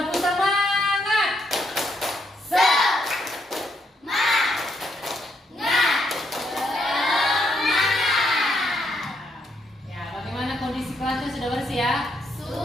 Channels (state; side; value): normal; both; correlation 0.76